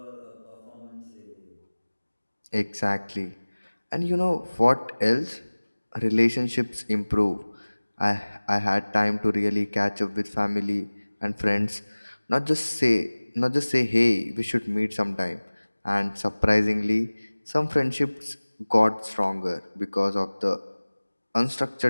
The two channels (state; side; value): inverted; both; correlation -1.00